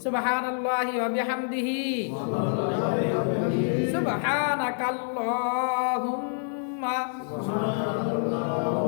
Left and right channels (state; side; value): silent; right; 60 dB below the other